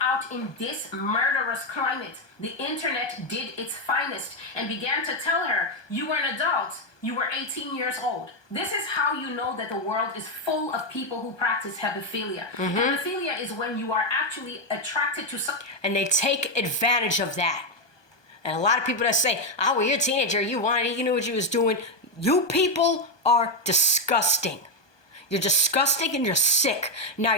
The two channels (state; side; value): late; right; 1.2 ms